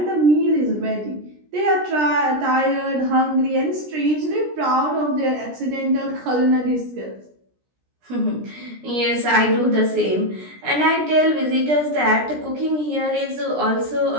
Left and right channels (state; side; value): late; left; 17 ms